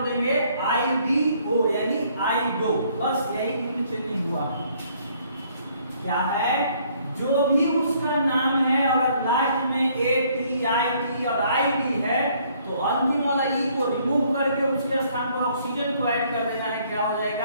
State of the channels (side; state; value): both; inverted; correlation -0.64